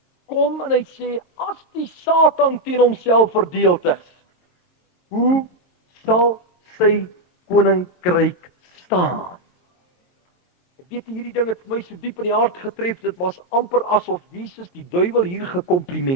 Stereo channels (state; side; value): late; right; 22 ms